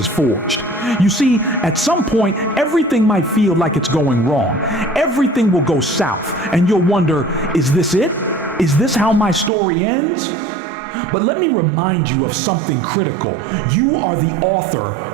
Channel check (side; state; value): left; drops out; at 9.5 s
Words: forged. You see, at some point, everything might feel like it's going wrong. Everything will go south, and you'll wonder, is this it? Is this how my story ends? But let me remind you of something critical. You are the author